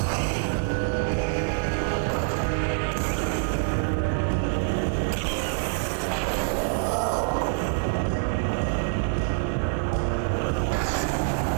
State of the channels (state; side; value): silent; left; 61 dB below the other